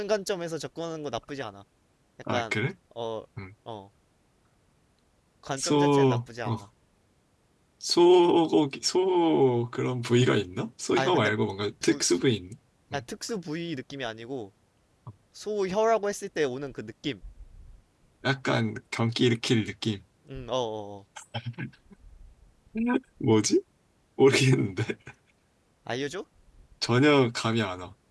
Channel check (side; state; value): both; identical; correlation 1.00